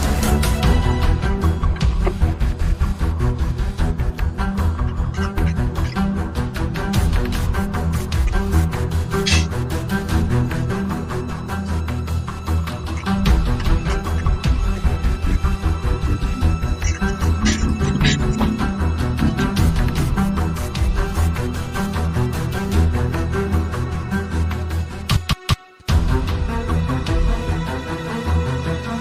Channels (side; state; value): both; identical; correlation 1.00